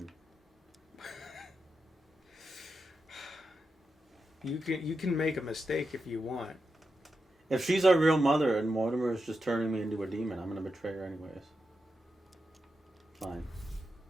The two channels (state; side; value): normal; both; correlation 0.88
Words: You can make a mistake if you want. If she's our real mother and Mortimer is just turning me into a demon, I'm gonna betray her anyways. Fine.